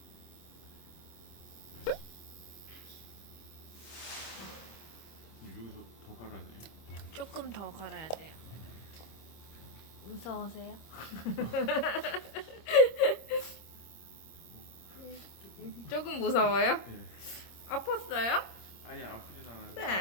여기서 더 갈아야 돼. 조금 더 갈아야 돼요. 무서우세요? 조금 무서워요? 네. 아팠어요? 아니 아프진 않아요.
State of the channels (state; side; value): late; right; 26 ms